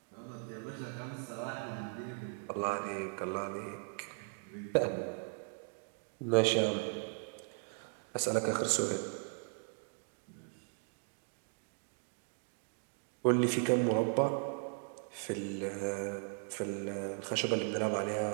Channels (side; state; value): left; silent; 53 dB below the other